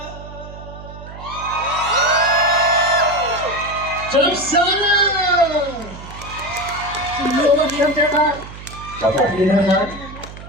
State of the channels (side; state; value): right; noise; hum, 14 dB below the sound